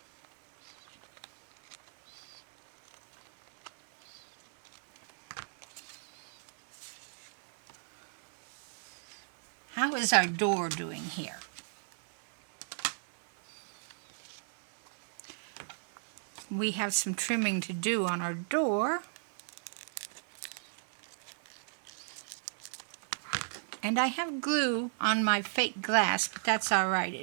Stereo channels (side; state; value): left; silent; 55 dB below the other